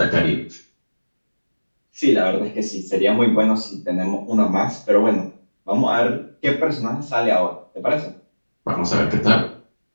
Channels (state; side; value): inverted; both; correlation -1.00